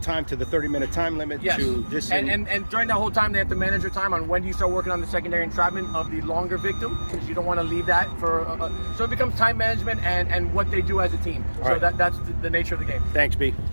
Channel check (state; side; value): inverted; both; correlation -1.00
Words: to the 30-minute time limit to disengage. And during that whole time, they have to manage their time on when do you start working on the secondary entrapment of the longer victim, because you don't want to leave that for. So it becomes time management and what they do as a team. All so right. that's the nature of the game. Thanks, B.